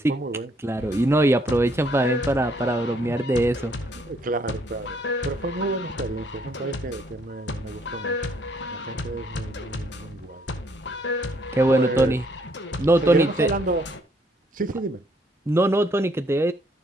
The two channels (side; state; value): both; normal; correlation 0.68